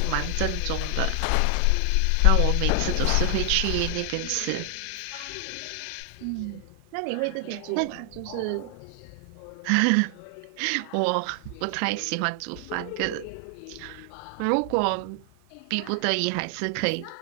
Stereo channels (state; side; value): different; both; correlation 0.00